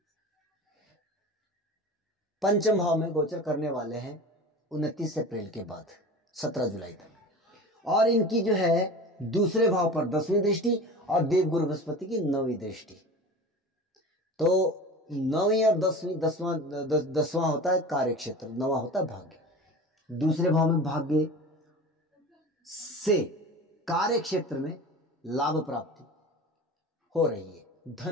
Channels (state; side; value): normal; both; correlation 0.35